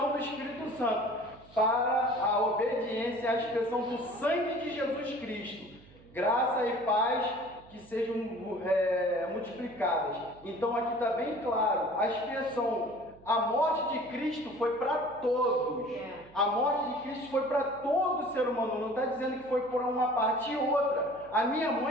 do Espírito Santo, para a obediência à expressão do sangue de Jesus Cristo. Graça e paz que sejam multiplicadas. Então, aqui está bem claro, a expressão, a morte de Cristo foi para todos. A morte de Cristo foi para todo ser humano. Não está dizendo que foi por uma parte e outra. A minha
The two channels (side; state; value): right; noise; hum, 24 dB below the sound